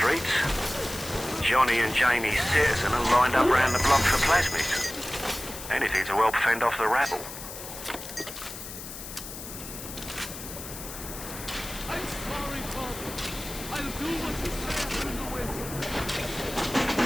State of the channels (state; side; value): noise; left; hiss, 11 dB below the sound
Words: Johnny and Jamie's citizen are lined up round the block for plasmids. Anything to help fend off the rabble. I'm sorry, Father. I'll do what you say after the winter.